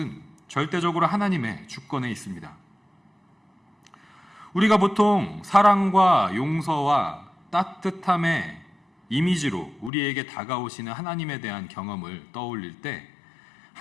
절대적으로 하나님의 주권에 있습니다. 우리가 보통 사랑과 용서와 따뜻함의 이미지로 우리에게 다가오시는 하나님에 대한 경험을 떠올릴 때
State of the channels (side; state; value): right; drops out; at 9.9 s